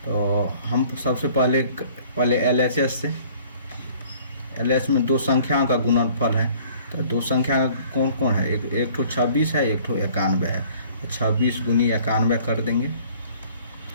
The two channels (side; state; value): both; inverted; correlation -0.54